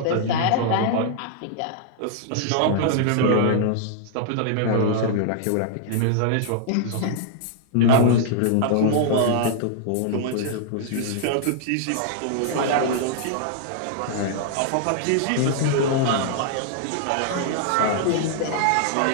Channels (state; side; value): different; both; correlation -0.01